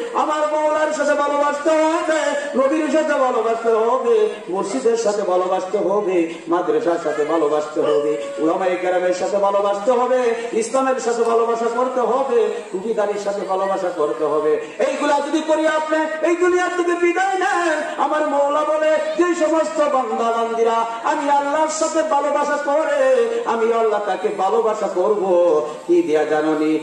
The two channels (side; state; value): both; identical; correlation 1.00